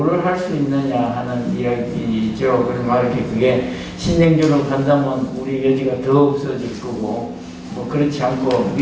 할 수 있느냐 하는 이야기죠. 그러면 이렇게 그게 신냉전으로 간다면 우리 여지가 더 없어질 거고 그렇지 않고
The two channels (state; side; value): identical; both; correlation 1.00